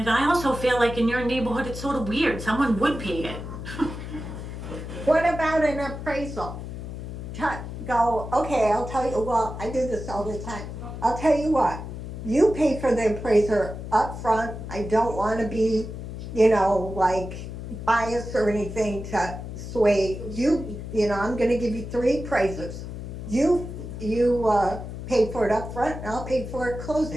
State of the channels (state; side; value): noise; left; hum, 8 dB below the sound